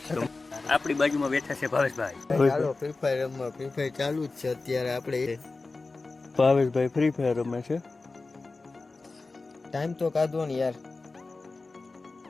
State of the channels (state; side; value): quieter; right; 3.6 dB